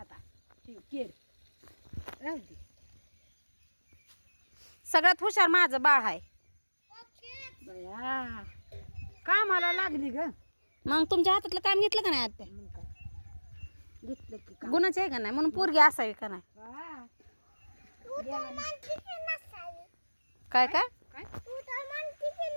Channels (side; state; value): both; inverted; correlation -1.00